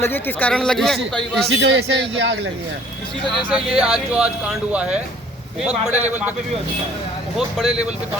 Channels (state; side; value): normal; both; correlation 0.55